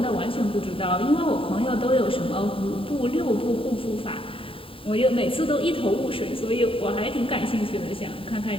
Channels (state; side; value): late; right; 0.26 ms